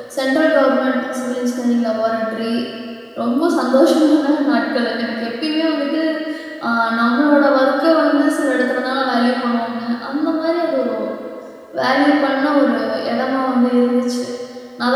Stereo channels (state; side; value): identical; both; correlation 1.00